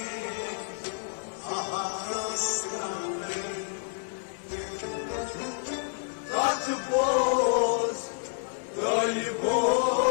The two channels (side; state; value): right; silent; digital silence